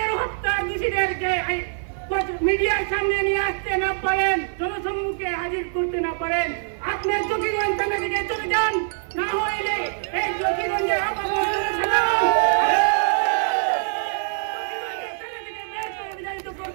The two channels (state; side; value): silent; left; 55 dB below the other